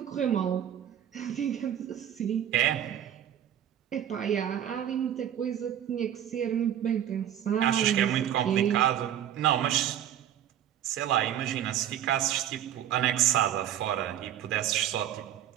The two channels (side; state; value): left; quieter; 10.6 dB